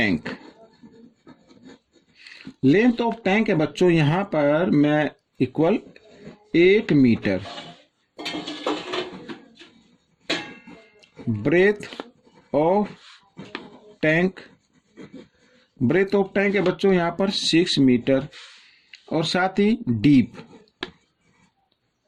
Length of tank है बच्चों यहां पर मैं equal 8 metre. Breadth of tank है बच्चों यहां पर 6 मीटर, और साथ ही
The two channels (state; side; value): identical; both; correlation 1.00